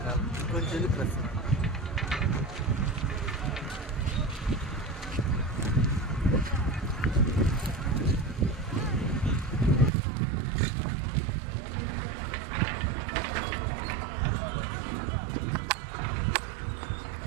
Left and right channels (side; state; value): left; drops out; at 9.9 s